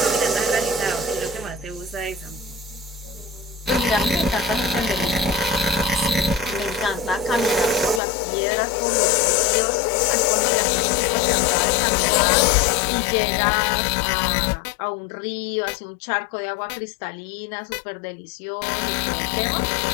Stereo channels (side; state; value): right; drops out; at 8.0 s